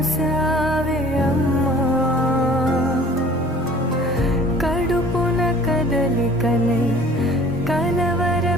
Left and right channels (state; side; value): normal; both; correlation 0.49